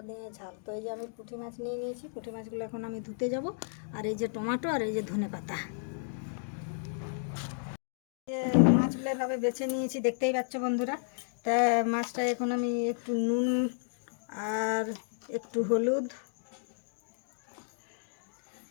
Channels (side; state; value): right; silent; digital silence